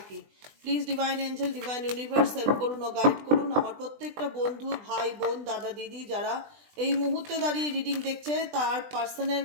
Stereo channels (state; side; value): late; left; 20 ms